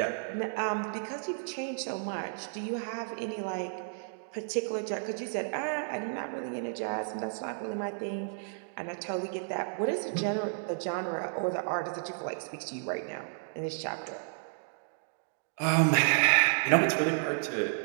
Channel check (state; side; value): silent; left; digital silence